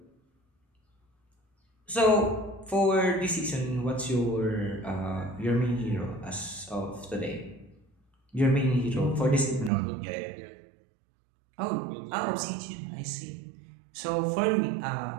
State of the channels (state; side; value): drops out; left; at 9.7 s